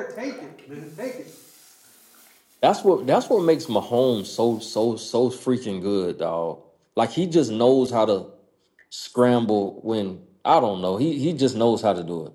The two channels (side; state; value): both; identical; correlation 1.00